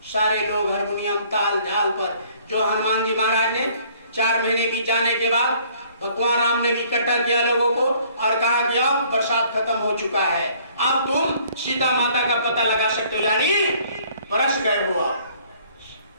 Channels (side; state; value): both; inverted; correlation -0.58